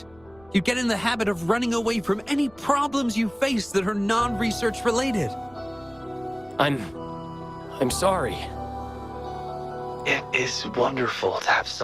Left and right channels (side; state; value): left; noise; rumble, 27 dB below the sound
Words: You get in the habit of running away from any problems you face that are non-research related. I'm sorry. It is wonderful to have